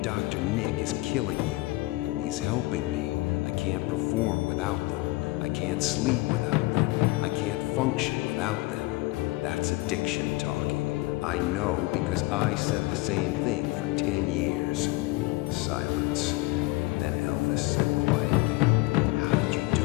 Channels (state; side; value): quieter; right; 21.1 dB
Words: Dr. Nick is killing you. He's helping me. I can't perform without them. I can't sleep without them. I can't function without them. That's addiction talking. I know because I said the same thing for 10 years. Silence. Then Elvis said quietly, how did you do